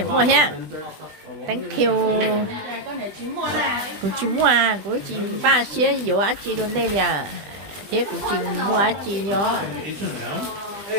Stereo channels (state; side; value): late; left; 20 ms